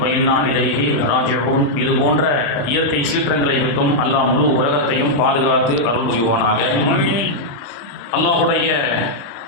இன்னா இலைஹி ராஜிஊன். இது போன்ற இயற்கை சீற்றங்களை விட்டும் அல்லாஹ் முழு உலகத்தையும் பாதுகாத்து அருள் புரிவானாக. அல்லாஹுடைய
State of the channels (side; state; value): right; late; 35 ms